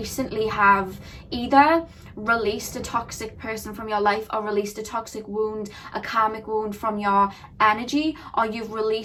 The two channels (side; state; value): both; identical; correlation 1.00